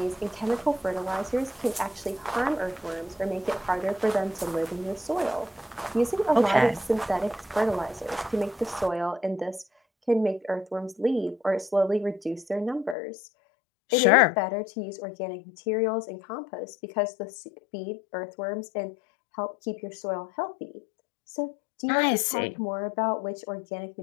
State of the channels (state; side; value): drops out; right; at 13.0 s